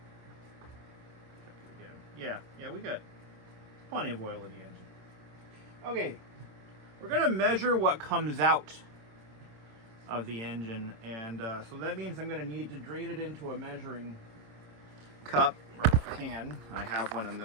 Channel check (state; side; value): late; left; 26 ms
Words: Check it again. Yeah, we got plenty of oil in the engine. Okay, we're gonna measure what comes out of the engine, and so that means I'm going to need to drain it into a measuring cup or pan. I have one